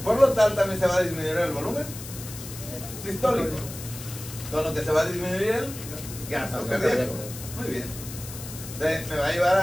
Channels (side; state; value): left; noise; hiss, 12 dB below the sound